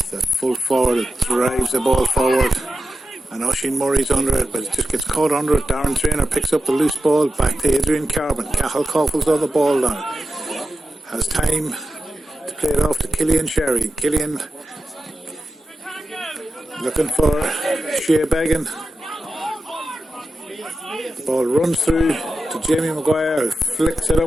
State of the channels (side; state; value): both; normal; correlation 0.92